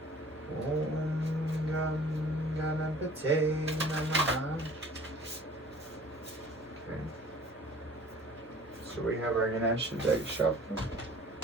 Om Gam Ganapate Namaha. Okay. So we have our Ganesha deck shuffle.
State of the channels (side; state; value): both; normal; correlation 0.49